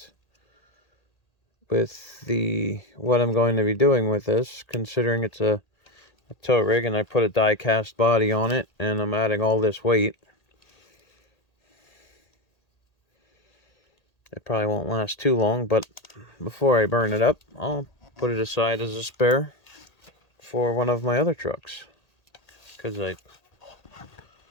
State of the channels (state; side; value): late; right; 1.8 ms